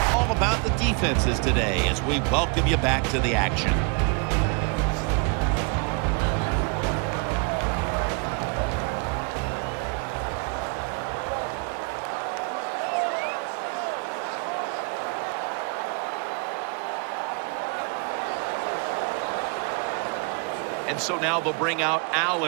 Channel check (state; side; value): quieter; left; 34.8 dB